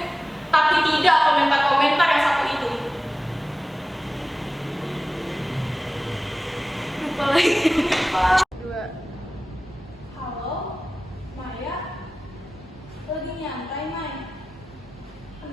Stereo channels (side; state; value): both; normal; correlation 0.96